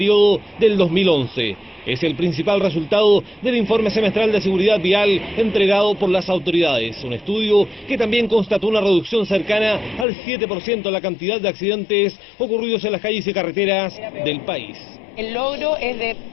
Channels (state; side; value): drops out; right; at 10.1 s